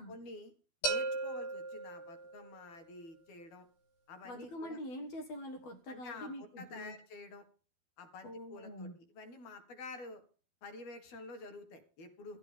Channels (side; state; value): right; late; 12 ms